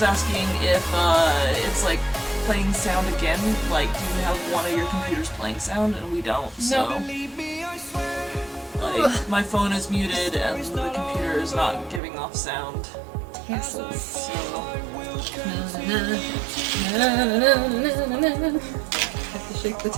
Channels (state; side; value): drops out; left; at 12.0 s